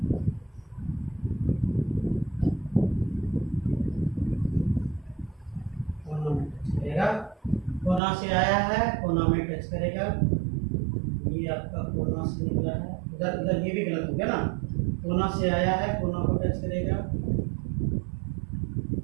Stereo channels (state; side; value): drops out; left; at 8.0 s